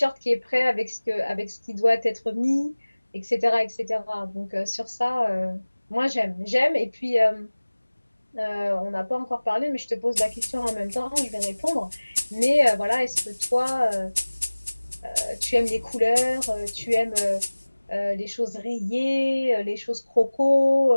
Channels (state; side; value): inverted; both; correlation -1.00